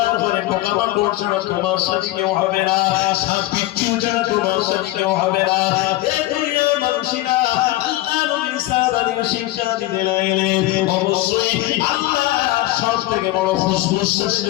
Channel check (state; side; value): quieter; right; 16.7 dB